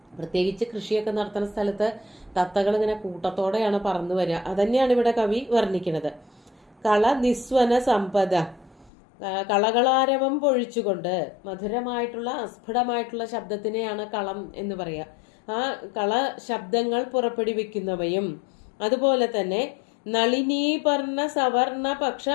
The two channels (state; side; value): drops out; right; at 8.9 s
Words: പ്രത്യേകിച്ച് കൃഷിയൊക്കെ നടത്തുന്ന സ്ഥലത്ത് തത്തകൾ ഇങ്ങനെ കൂട്ടത്തോടെയാണ് പറന്നു വരിക. അതന്നെയാണ് ഇവിടെ കവി വർണ്ണിക്കുന്നത്. കള നിസ്വന സമ്പദ, കളകളാരവം പൊഴിച്ചുകൊണ്ട്, മധുരമായിട്ടുള്ള അസ്ഫുടമായിട്ടുള്ള ശബ്ദത്തിനെയാണ് കളം എന്ന് പറയുക. ആ കള ശബ്ദങ്ങൾ പുറപ്പെടുവിക്കുന്നവയും അതുപോലെ തന്നെ നളിനീപർണ സവർണ